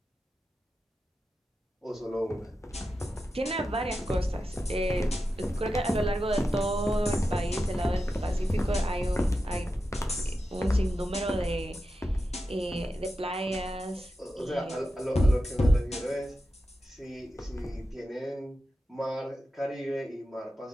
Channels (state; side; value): normal; both; correlation 0.90